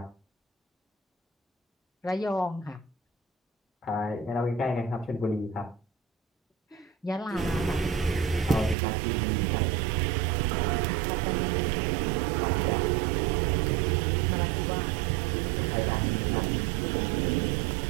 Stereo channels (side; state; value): left; drops out; at 8.8 s